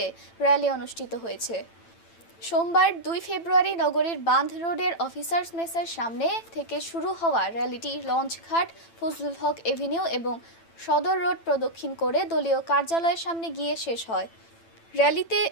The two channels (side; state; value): right; late; 8.9 ms